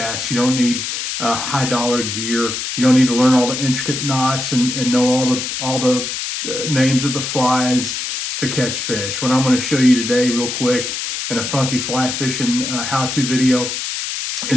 You don't need high dollar gear. You don't need to learn all the intricate knots and know all the names of the flies to catch fish. What I'm going to show you today real quick in a funky fly fishing how-to video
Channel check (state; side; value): noise; left; hiss, 4 dB below the sound